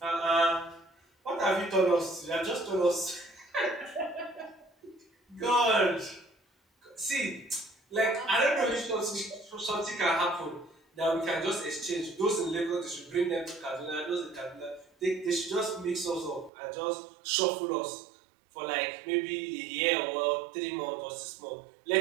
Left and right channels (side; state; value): left; drops out; at 16.5 s